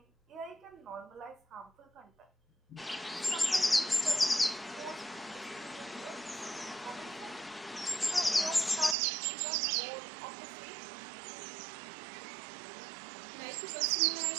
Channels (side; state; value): left; drops out; at 9.0 s